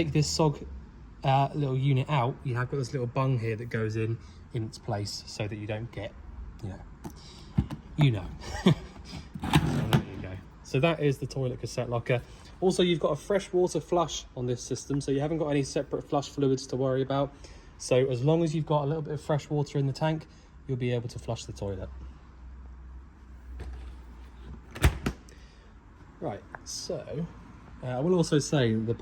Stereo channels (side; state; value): both; identical; correlation 1.00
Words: this SOG little unit out, you have got this little bung here that goes in its place so that you don't get, you know. So there you go. So that is the toilet cassette locker. Also, you've got a fresh water flush on this system, so you haven't got any separate flush fluids to worry about. So as long as you've got a little bit of fresh water in the tank, you'll be able to flush the toilet. Right, so I will also say the